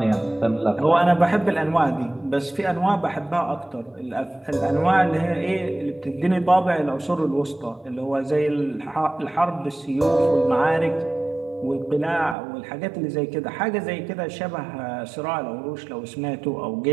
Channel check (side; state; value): left; drops out; at 12.4 s